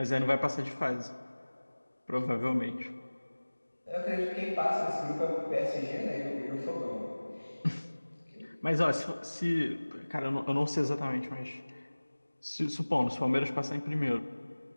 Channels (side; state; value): both; inverted; correlation -1.00